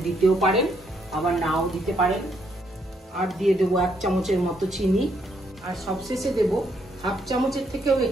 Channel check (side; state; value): both; normal; correlation 0.73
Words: দিতেও পারেন, আবার নাও দিতে পারেন। আর দিয়ে দেবো 1 চামচের মতো চিনি, আর সবশেষে দেব হাফ চামচের থেকেও